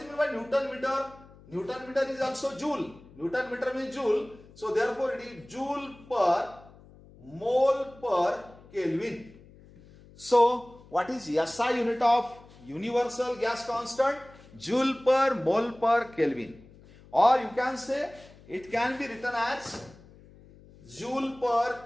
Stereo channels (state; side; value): noise; left; hum, 23 dB below the sound